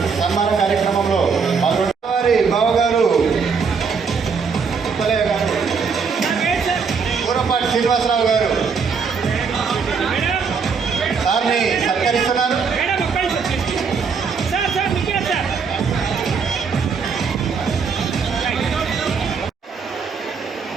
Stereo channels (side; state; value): left; quieter; 5.6 dB